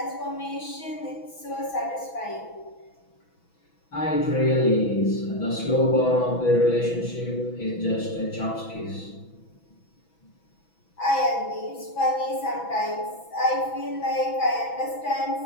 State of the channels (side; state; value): right; late; 6.1 ms